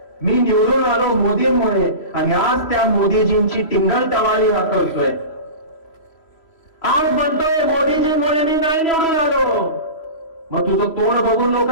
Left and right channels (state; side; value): late; right; 3.0 ms